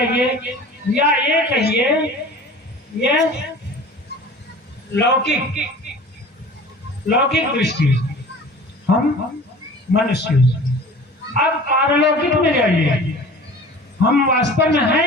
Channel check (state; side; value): normal; both; correlation 0.42